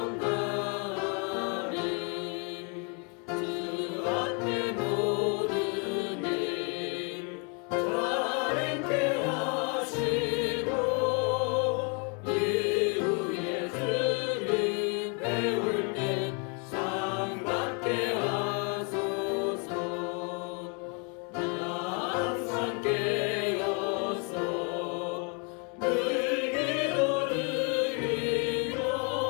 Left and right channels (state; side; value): quieter; right; 35.6 dB